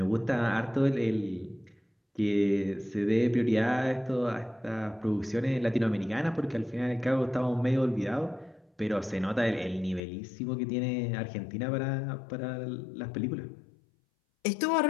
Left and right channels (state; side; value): drops out; right; at 10.0 s